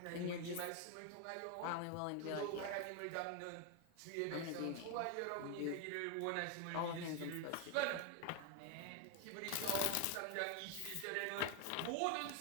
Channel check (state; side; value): different; both; correlation 0.01